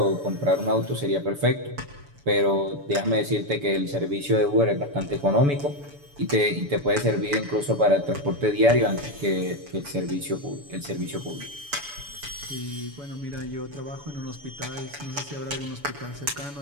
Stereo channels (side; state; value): left; late; 7.0 ms